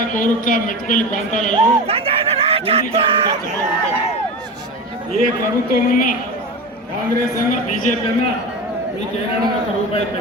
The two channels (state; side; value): normal; both; correlation 0.26